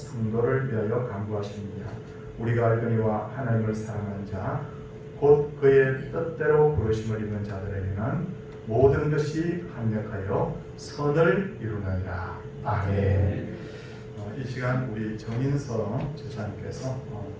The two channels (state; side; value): identical; both; correlation 1.00